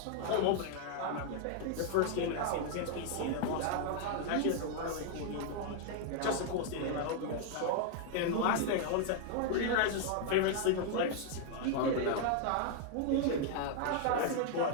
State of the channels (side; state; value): both; different; correlation 0.00